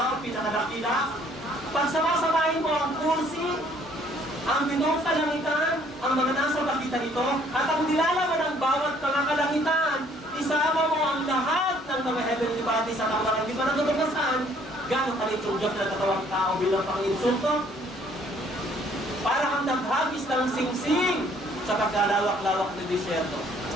o pinakadakila? Pag sama-samahin mo ang kursi, ang 7 kalangitan, ang mga nasa pagitan nito, at ang nilalaman ng bawat mga kalangitan, isama mo ang lahat ng mga heavenly bodies at ang mga hindi pa natutuklasan, gano'ng kalit yung Diyos na katawang tao bilang pang-insulto? Para kang naghagis ng singsing sa pagkalawak-lawak na disyerto.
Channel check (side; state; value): both; normal; correlation 0.61